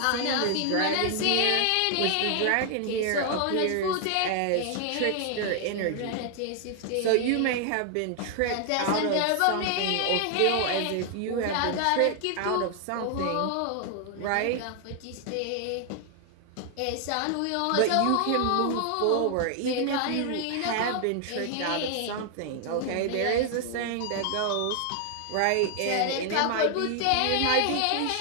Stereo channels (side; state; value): both; different; correlation 0.00